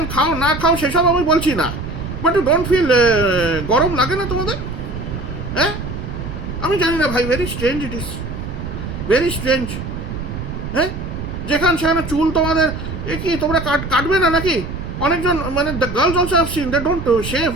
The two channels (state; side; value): noise; right; rumble, 7 dB below the sound